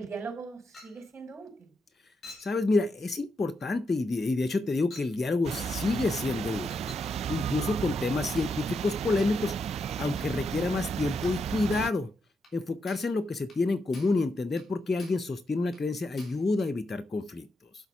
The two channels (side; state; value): both; normal; correlation 0.82